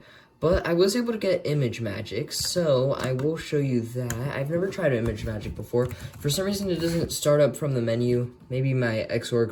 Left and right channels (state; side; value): identical; both; correlation 1.00